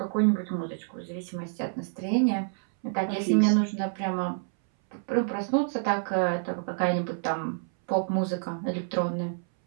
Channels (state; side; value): silent; left; 59 dB below the other